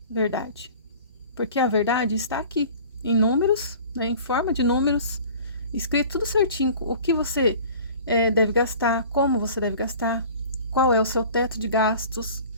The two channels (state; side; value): inverted; both; correlation -0.44